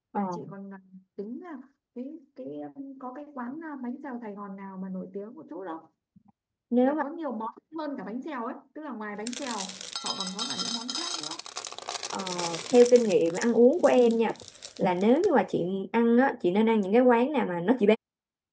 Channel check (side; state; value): both; identical; correlation 1.00